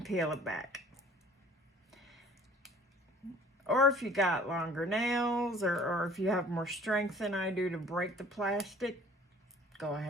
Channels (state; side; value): normal; both; correlation 0.51